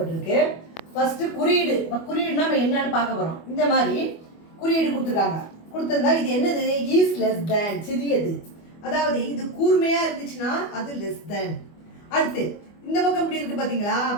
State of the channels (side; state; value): right; late; 25 ms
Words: ஃபர்ஸ்ட் குறியீடுனா நம்ம என்னன்னு பார்க்க போகிறோம். இந்த மாதிரி குறியீடு கொடுத்துருந்தா இது என்னது? இஸ் லெஸ் தேன், சிறியது. அதாவது இது கூர்மையா இருந்துச்சுன்னா அது லெஸ் தென். அடுத்து இந்த பக்கம் இப்படி இருக்கு பாத்தீங்களா,